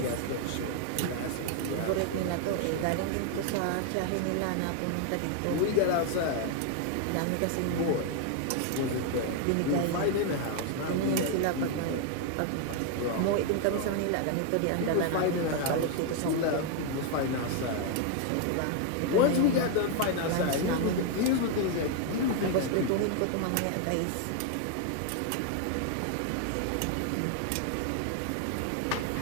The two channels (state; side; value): different; both; correlation 0.00